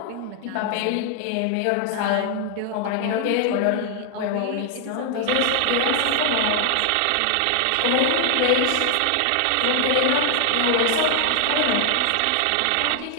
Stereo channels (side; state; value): both; different; correlation 0.00